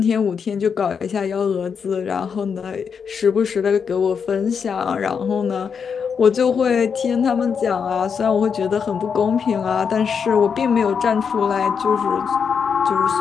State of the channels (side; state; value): right; quieter; 6.5 dB